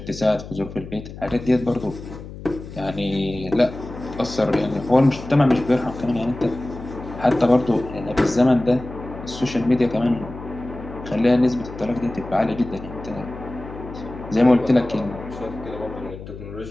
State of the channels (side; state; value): left; noise; hum, 13 dB below the sound